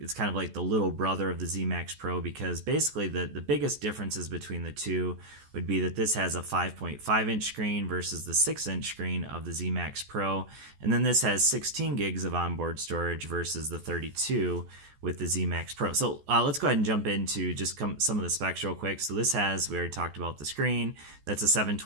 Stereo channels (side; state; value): left; late; 14 ms